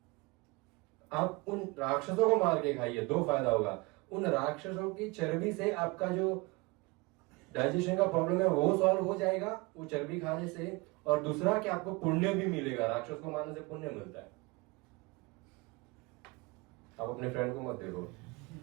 आप उन राक्षसों को मार के खाइए, 2 फायदा होगा, उन राक्षसों की चर्बी से आपका जो डाइजेशन का प्रॉब्लम है वो सॉल्व हो जाएगा वो चर्बी खाने से। और दूसरा कि आपको पुण्य भी मिलेगा, राक्षस को मारने से पुण्य मिलता है। आप अपने फ्रेंड को मत देखो।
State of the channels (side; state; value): left; quieter; 25.4 dB